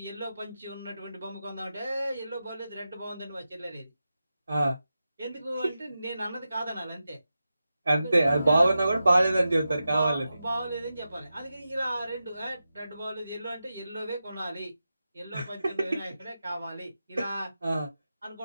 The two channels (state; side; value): inverted; both; correlation -0.91